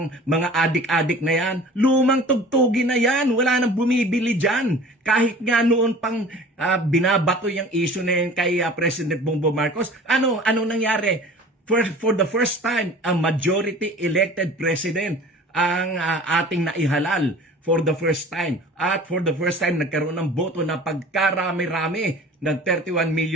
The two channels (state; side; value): normal; both; correlation 0.43